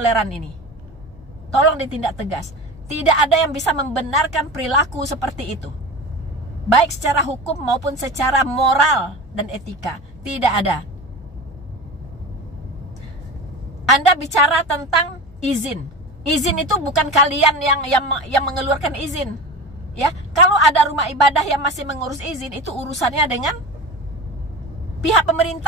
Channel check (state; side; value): normal; both; correlation 0.28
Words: ini. Tolong ditindak tegas. Tidak ada yang bisa membenarkan perilaku seperti itu. Baik secara hukum maupun secara moral dan etika. Tidak ada. Anda bicara tentang izin. Izin itu bukan kalian yang mengeluarkan izin. Ya, kalau ada rumah ibadah yang masih mengurus izin, itu urusannya dengan pihak